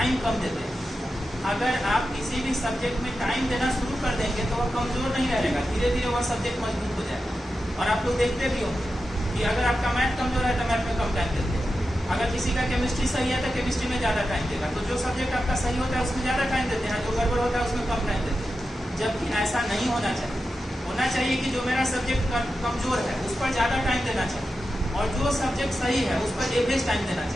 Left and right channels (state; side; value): normal; both; correlation 0.91